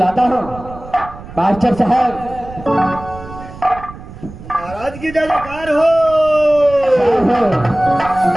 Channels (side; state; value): right; noise; rumble, 15 dB below the sound